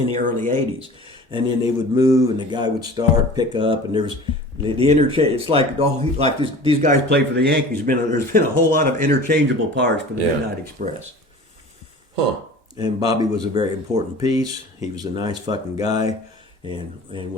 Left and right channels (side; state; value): both; normal; correlation 0.40